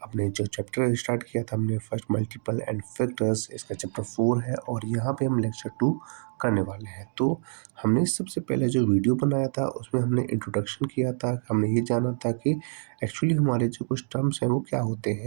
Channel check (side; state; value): left; silent; digital silence